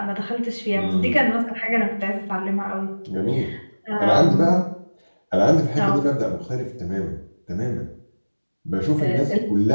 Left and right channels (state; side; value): inverted; both; correlation -1.00